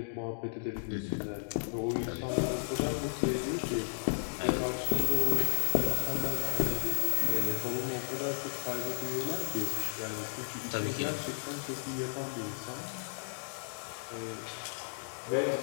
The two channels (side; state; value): right; silent; digital silence